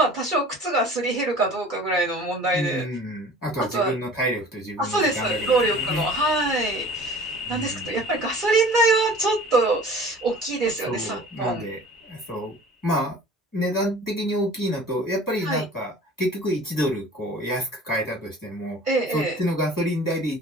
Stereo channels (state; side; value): normal; both; correlation 0.45